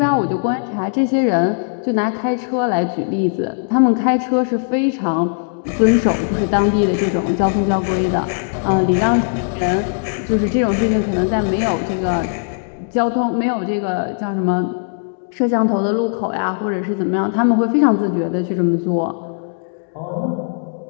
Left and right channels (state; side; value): silent; right; digital silence